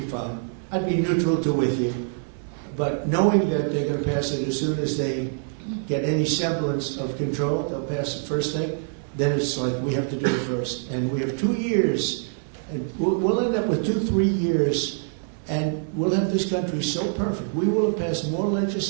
fine. I'd be neutral to with you. But knowing that they're going to pass it as soon as they get any semblance of control, they'll pass it first thing, then it's like we have to do it first. And we have 2 years, and we'll end up with 2-3 years, and we'll have this country so perfect. We will have passed more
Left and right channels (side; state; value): left; silent; digital silence